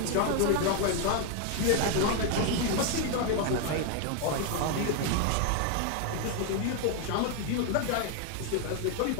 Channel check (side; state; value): both; different; correlation 0.01